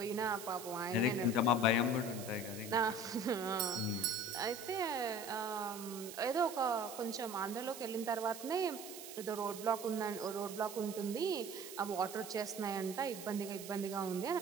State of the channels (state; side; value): noise; right; hiss, 12 dB below the sound